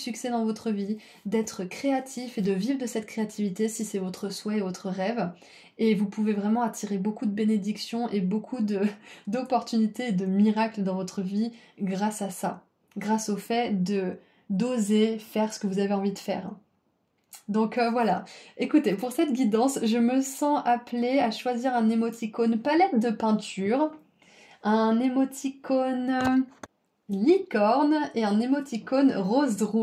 dans votre vie, d'être créatif et de vivre de cette créativité si c'est votre souhait et votre rêve. Et vous pouvez vraiment attirer beaucoup de bénédictions et beaucoup d'opportunités et de miracles dans votre vie grâce à ça. Grâce au fait d'oser faire ce que vous avez envie de faire. Donc voilà, écoutez, pour cette guidance, je me sens appelée à choisir un émoticône palette de peinture, un émoticône licorne et un émoticône rose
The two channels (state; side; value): identical; both; correlation 1.00